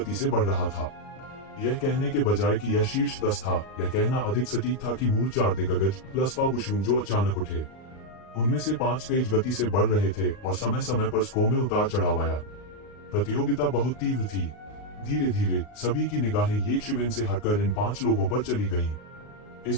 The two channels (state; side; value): late; right; 39 ms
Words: से बढ़ रहा था। यह कहने के बजाय कि यह शीर्ष 10 था, यह कहना अधिक सटीक था कि मूल 4 दिग्गज प्लस फाबुशून जो अचानक उठे, उनमें से 5 तेज गति से बढ़ रहे थे और समय समय पर स्को में उतार चढ़ाव आया। प्रतियोगिता बहुत तीव्र थी। धीरे धीरे सभी की निगाहें येज़ेबेल से हटकर इन 5 लोगों पर चली गईं।